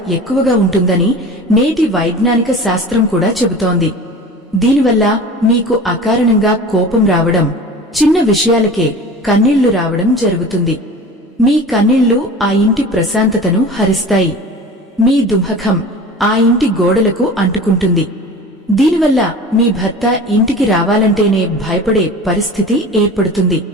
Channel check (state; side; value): normal; both; correlation 0.37